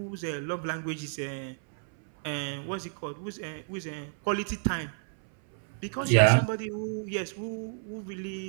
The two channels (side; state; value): left; silent; 57 dB below the other